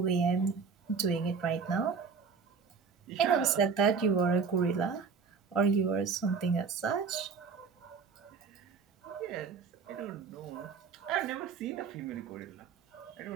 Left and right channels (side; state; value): left; quieter; 5.6 dB